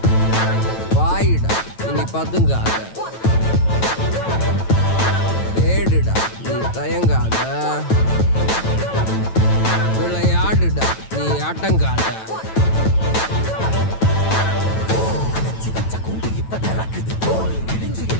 வாயிடா இனி பதுங்காத, தேடுடா நீ தயங்காத, விளையாடுடா நீ அடங்காத.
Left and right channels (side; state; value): right; late; 9.1 ms